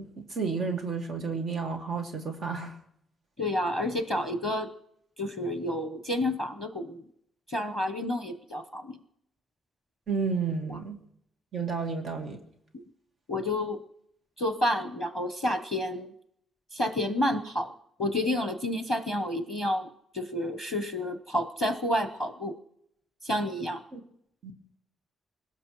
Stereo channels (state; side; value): normal; both; correlation 0.54